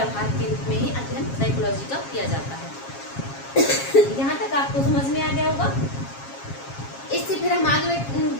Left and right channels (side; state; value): right; late; 7.3 ms